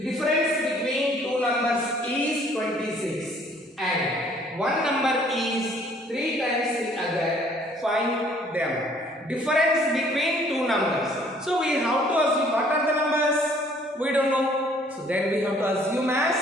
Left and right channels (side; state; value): both; normal; correlation 0.59